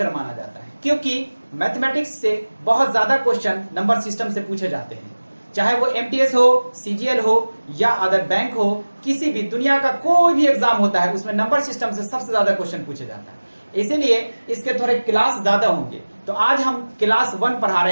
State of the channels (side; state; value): both; inverted; correlation -1.00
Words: माना जाता है, क्योंकि मैथमेटिक्स से बहुत ज्यादा क्वेश्चन नंबर सिस्टम से पूछे जाते हैं। चाहे वो एमटीएस हो, सीजीएल हो या अदर बैंक हो, किसी भी दुनिया का कोई भी एग्जाम होता है उसमें नंबर सिस्टम से सबसे ज्यादा क्वेश्चन पूछे जाता है। इसीलिए इसके थोड़े क्लास ज्यादा होंगे। तो आज हम क्लास 1 पढ़ा